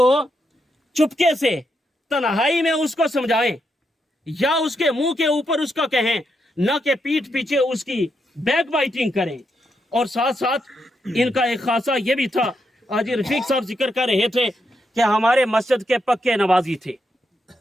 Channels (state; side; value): normal; both; correlation 0.82